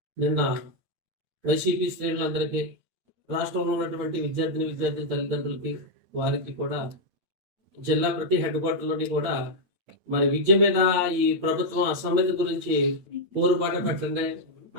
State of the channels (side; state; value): left; late; 9.1 ms